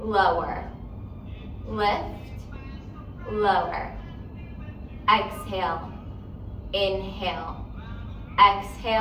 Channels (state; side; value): identical; both; correlation 1.00